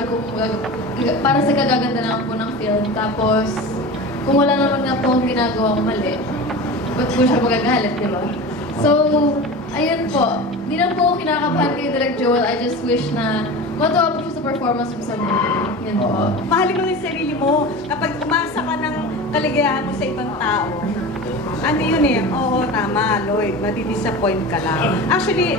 para sa kagaganda lang po ng film. Tapos, kung wala naman nga po akong ginagawa mali, ba't po siya magagalit, di ba? So, ayun po, hindi lang po ako kinakabahan kay Direk Joel. I just wish na matuwa po siya sa performance mo sa movie. Yun po. Mahalin mo yung sarili mo. Kapag umasa ka ng kaligayahan mo sa ibang tao, ano yun eh, oo, tama, Lloyd, madi-disappoint ka lang. Actually,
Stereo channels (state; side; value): normal; both; correlation 0.31